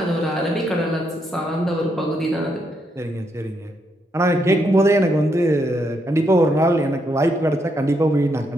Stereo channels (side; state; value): both; normal; correlation 0.78